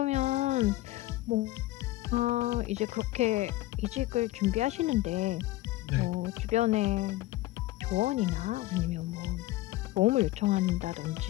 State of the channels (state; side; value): quieter; right; 17.5 dB